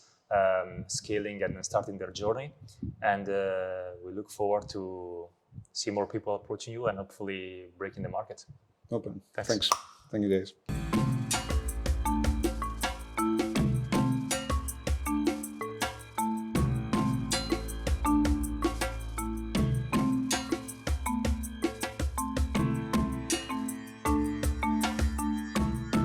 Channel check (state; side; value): identical; both; correlation 1.00